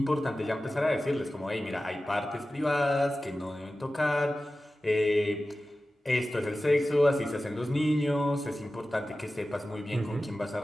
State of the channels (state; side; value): normal; both; correlation 0.95